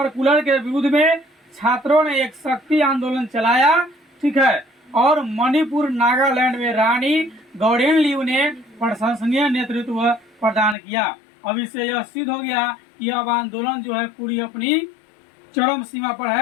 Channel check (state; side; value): drops out; right; at 10.8 s